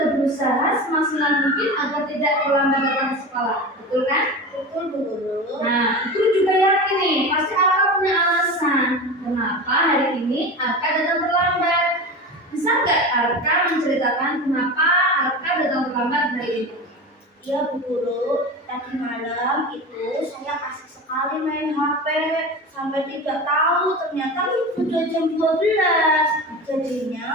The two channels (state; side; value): normal; both; correlation 0.28